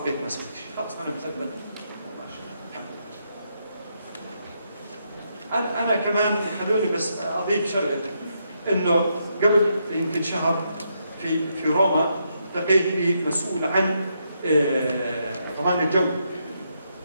ما سويت شيء، خلاص أنا مثبت. أنا كمان خلوني بس أضيف شغلة، إنه قبل يمكن شهر في روما التقيت بمسؤول عن ضمان الجو،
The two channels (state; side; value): inverted; both; correlation -0.79